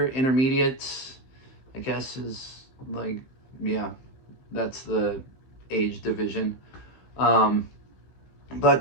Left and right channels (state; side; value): late; right; 15 ms